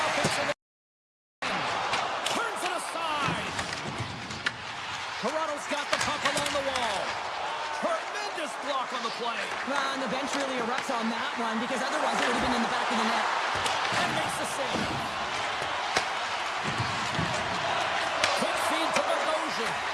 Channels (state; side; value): identical; both; correlation 1.00